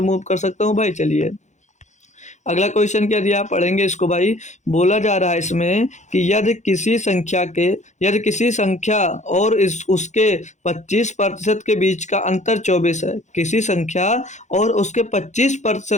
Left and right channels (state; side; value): late; right; 0.34 ms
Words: मूव कर सकता हूँ भाई, चलिए। अगला क्वेश्चन क्या दिया, पढ़ेंगे इसको भाई। बोला जा रहा है इसमें कि यदि किसी संख्या और इस उसके 25% के बीच का अंतर 24 है, किसी संख्या और उसके